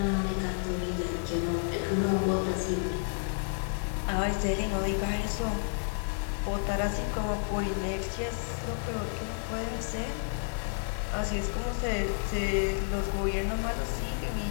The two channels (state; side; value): silent; right; 57 dB below the other